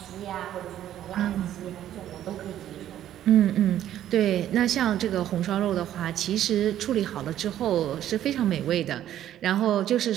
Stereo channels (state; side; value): quieter; left; 11.7 dB